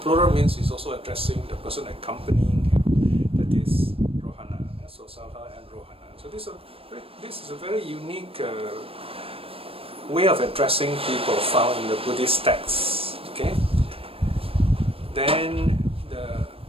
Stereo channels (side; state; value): left; late; 0.28 ms